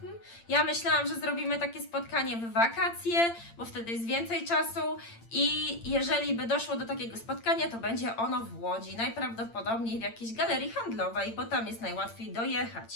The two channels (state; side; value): late; right; 8.8 ms